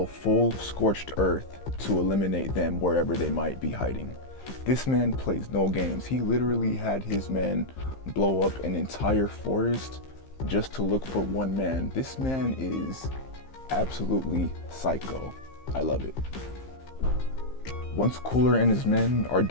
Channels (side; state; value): right; late; 15 ms